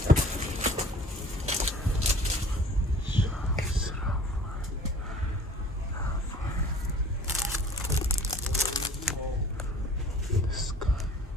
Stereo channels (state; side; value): normal; both; correlation 0.49